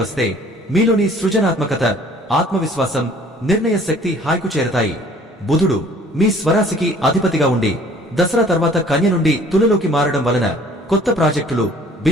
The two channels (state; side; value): normal; both; correlation 0.54